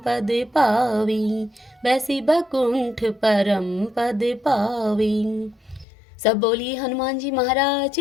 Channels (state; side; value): drops out; right; at 5.9 s